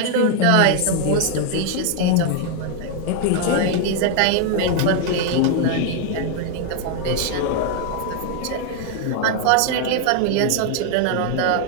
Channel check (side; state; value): both; different; correlation 0.00